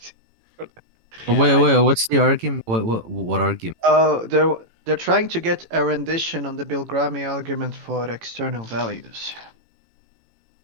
Yeah, wait, what's the argument? What argument? They're trying to get a rendition on the Bilgrami argument for external values.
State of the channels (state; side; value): late; left; 18 ms